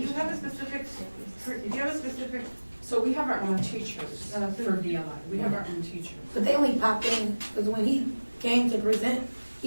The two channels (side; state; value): both; inverted; correlation -1.00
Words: you have a specific, So we have our own teachers for VLI. We have our own teachers. But they only pop in, because when he came to present,